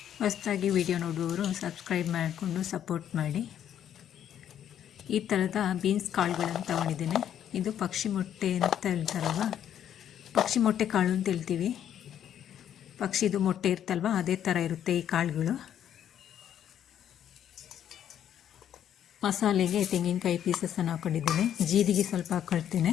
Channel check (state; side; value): quieter; right; 10.0 dB